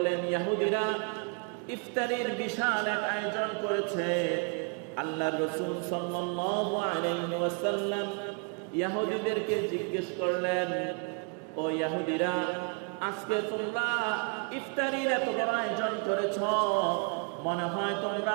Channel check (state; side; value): quieter; left; 38.1 dB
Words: ইহুদিরা ইফতারির বিশাল এক আয়োজন করেছে। আল্লাহর রাসূল সাল্লাল্লাহু আলাইহি ওয়াসাল্লাম ইহুদিদেরকে জিজ্ঞেস করলেন, ও ইহুদিরা, আজকে তোমরা ইফতারির এত বড় আয়োজন করেছ, মনে হয়